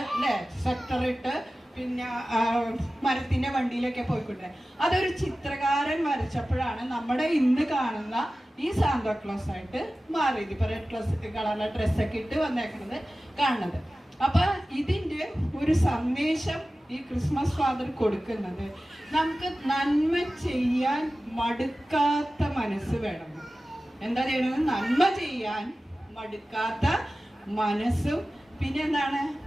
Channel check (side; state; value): both; normal; correlation 0.96